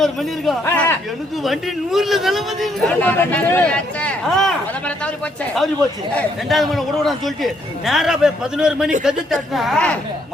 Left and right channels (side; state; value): both; normal; correlation 0.71